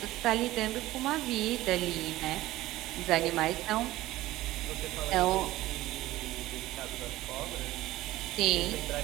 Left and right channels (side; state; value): left; quieter; 16.7 dB